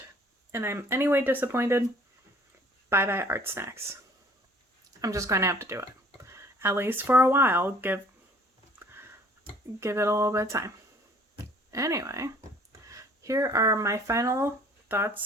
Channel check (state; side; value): normal; both; correlation 0.54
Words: and I'm anyway disappointed, bye-bye ArtSnacks. I'm just going to have to do it. At least for a while. Give it a little bit of time. Anyway, here are my final